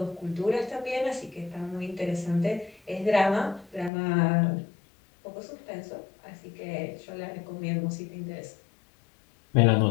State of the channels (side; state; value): right; drops out; at 3.9 s